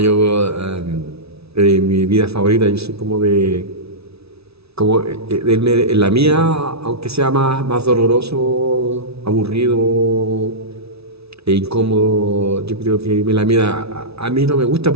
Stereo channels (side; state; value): left; late; 0.78 ms